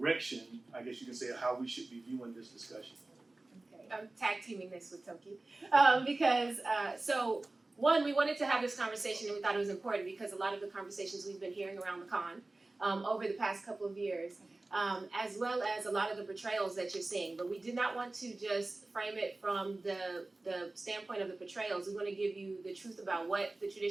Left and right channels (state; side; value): quieter; left; 3.0 dB